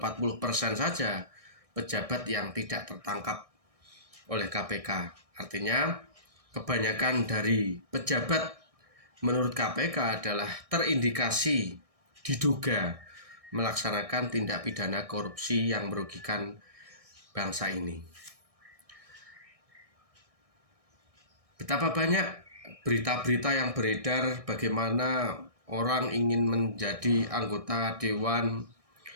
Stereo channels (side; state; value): left; late; 1.6 ms